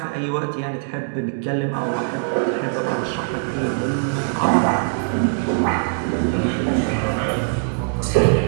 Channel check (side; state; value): left; silent; digital silence